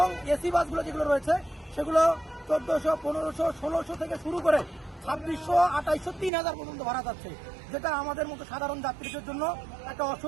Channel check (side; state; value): left; drops out; at 6.3 s